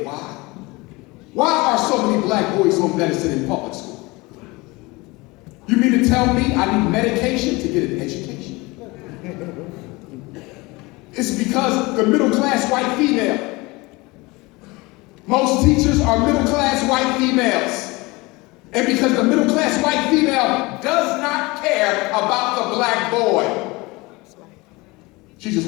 why? Why are so many black boys on medicine in public school? You mean to tell me I need medication to get an education? It's because the middle-class white female. Most teachers are middle-class white females. And because the middle-class white female does not care about the black boy, she just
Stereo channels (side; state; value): right; quieter; 23.5 dB